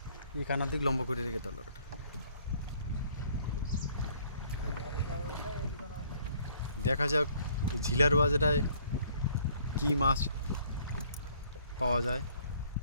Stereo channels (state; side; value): inverted; both; correlation -0.61